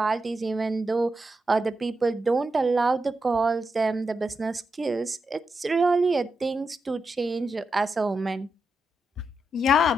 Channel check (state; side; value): normal; both; correlation 0.86